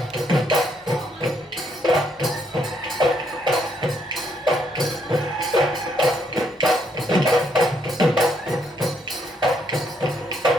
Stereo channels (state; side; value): normal; both; correlation 0.73